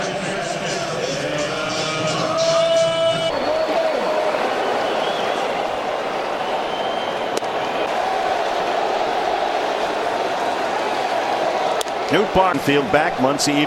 Newt Barnfield back. Muncy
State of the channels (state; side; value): identical; both; correlation 1.00